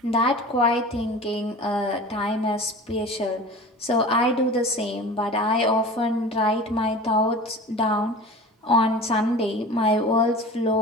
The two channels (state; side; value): normal; both; correlation 0.36